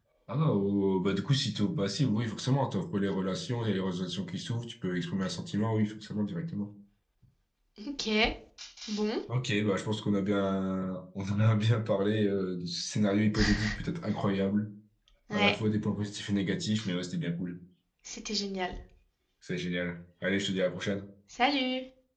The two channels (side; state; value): both; identical; correlation 1.00